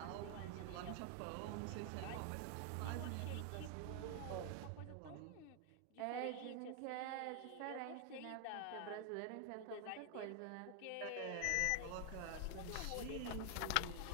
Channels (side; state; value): both; different; correlation 0.00